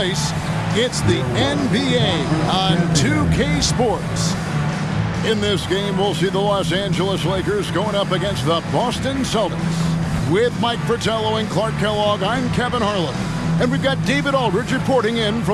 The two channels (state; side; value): identical; both; correlation 1.00